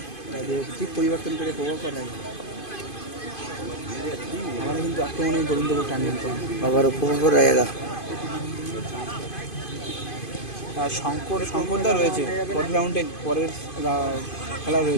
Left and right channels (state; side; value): late; right; 2.5 ms